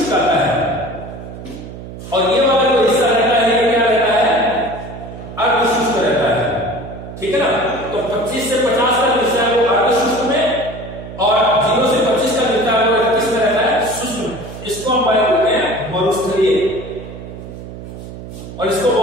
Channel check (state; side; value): noise; right; hum, 12 dB below the sound